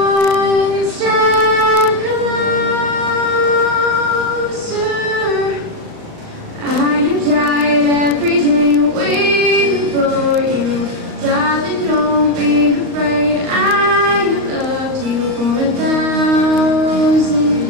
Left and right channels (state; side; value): late; left; 38 ms